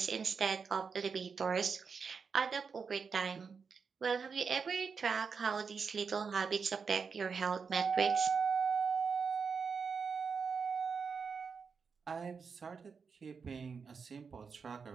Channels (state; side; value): quieter; left; 5.6 dB